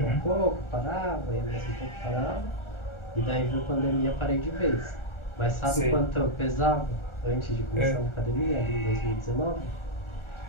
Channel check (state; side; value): late; right; 1.4 ms